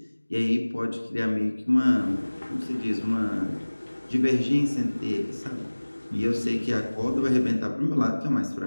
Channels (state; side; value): inverted; both; correlation -1.00